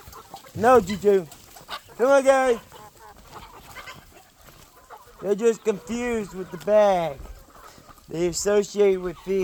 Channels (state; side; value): identical; both; correlation 1.00